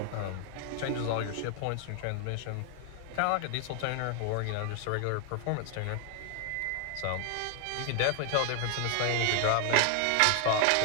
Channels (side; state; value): both; different; correlation 0.00